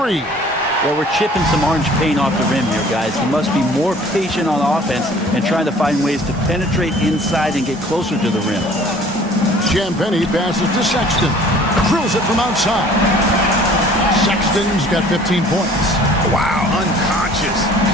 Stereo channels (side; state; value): both; normal; correlation 0.51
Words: Well, we're chipping some orange paint off the rim here, guys. He must be more patient on offense and trying to find ways to penetrate inside and get closer to the rim. Champagny passes to Sexton. Drills it from outside. Sexton's got 15 points. Wow, unconscious